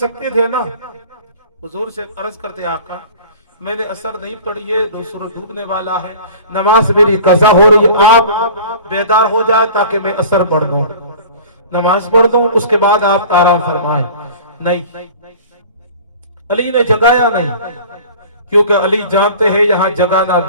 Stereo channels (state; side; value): inverted; both; correlation -0.42